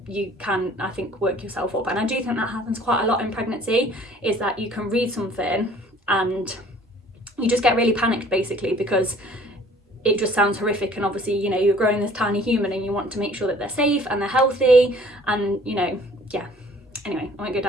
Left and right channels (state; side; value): normal; both; correlation 0.53